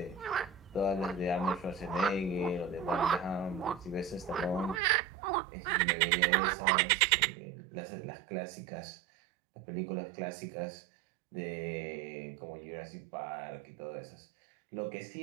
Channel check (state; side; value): drops out; left; at 4.8 s